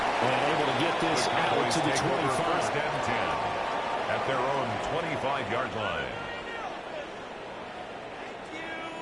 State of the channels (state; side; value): identical; both; correlation 1.00